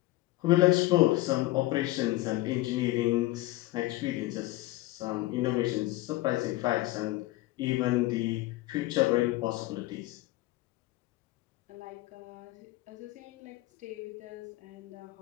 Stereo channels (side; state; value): right; quieter; 18.1 dB